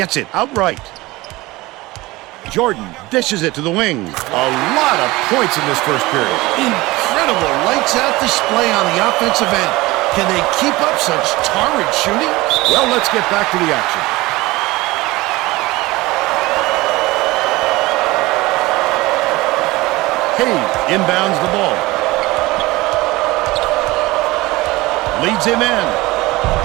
it outright. Jordan dishes it to the wing. A lot of points in this first period. Incredible lights-out display on the offensive end. Can they keep up such torrid shooting? Well, let's get back to the action. Hayes inbounds the ball. Leads him in.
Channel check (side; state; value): left; quieter; 20.4 dB